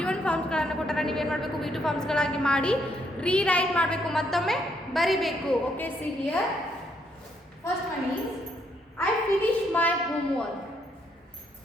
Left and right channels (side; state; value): both; normal; correlation 0.73